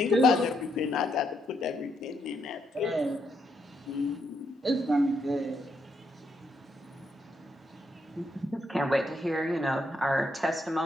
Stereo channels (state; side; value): normal; both; correlation 0.77